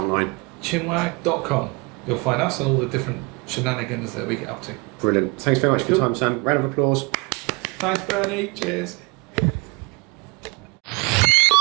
online? Chinwag.com. You'll find us and all the different shenanigans that we get up to. Brilliant. Thanks very much for your time, Sam. Round of applause. Thanks, Bernie. Cheers.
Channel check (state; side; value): quieter; left; 28.4 dB